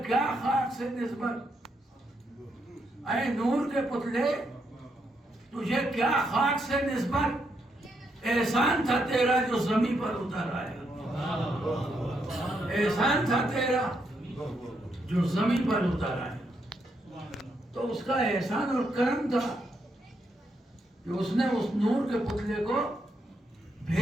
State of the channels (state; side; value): normal; both; correlation 0.79